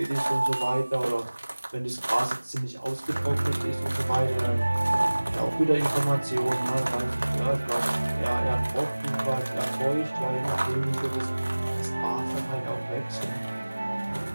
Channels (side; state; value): both; inverted; correlation -1.00